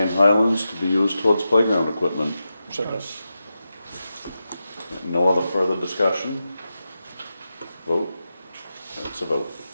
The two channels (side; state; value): both; inverted; correlation -0.90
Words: Highlands to be used towards playground equipment. Second. No other further discussion? Vote? That's a vote.